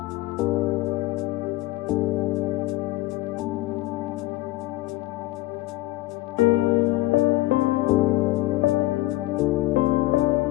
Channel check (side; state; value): right; quieter; 18.5 dB